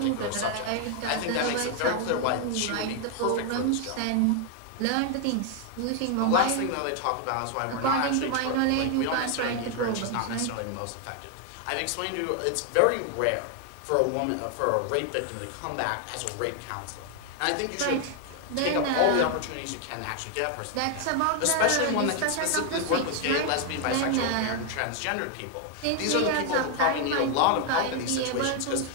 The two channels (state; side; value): different; both; correlation 0.00